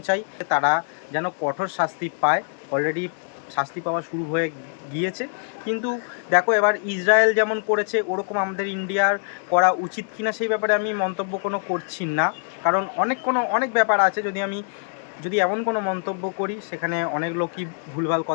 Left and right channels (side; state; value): right; silent; 63 dB below the other